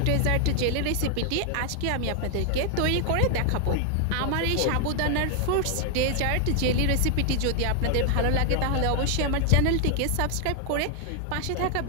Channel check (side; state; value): both; different; correlation 0.00